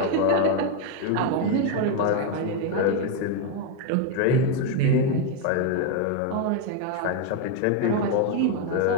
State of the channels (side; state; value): both; different; correlation 0.01